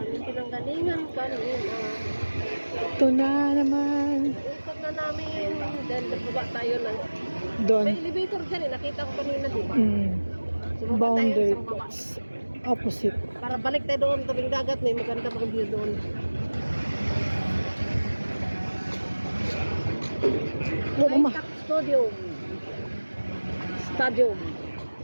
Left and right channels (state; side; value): inverted; both; correlation -1.00